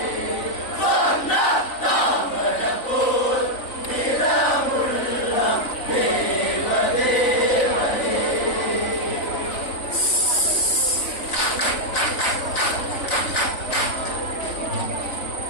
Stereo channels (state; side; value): late; right; 3.9 ms